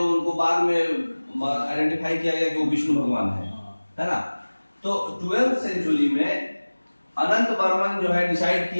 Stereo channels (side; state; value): both; inverted; correlation -1.00